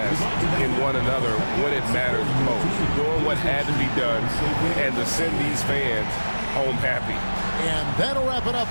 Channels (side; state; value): both; inverted; correlation -1.00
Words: in one another when it matters most. Doing what had to be done and to send these fans home happy. And that'll wrap it up,